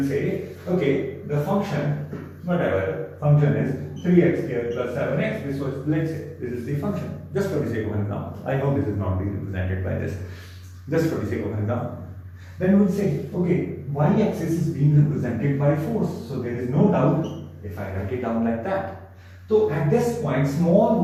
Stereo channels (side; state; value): both; identical; correlation 1.00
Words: say, okay, the function, whatever function is 3x squared plus 7x. This was, let's say, this is the function. Just for the sake of an example. I know this is not being represented by this. Just for the sake of an example. Then we'll say, okay, y-axis is being represented by force. So there is no doubt if I write it down like that. So at this point, small